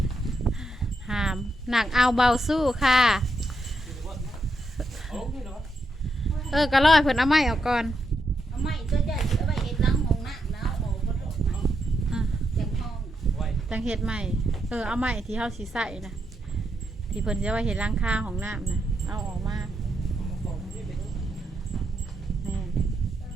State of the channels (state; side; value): normal; both; correlation 0.81